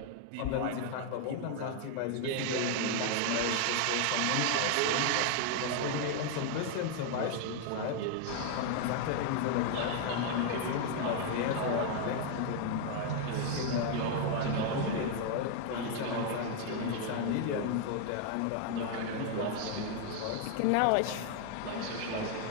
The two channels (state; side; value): different; both; correlation 0.00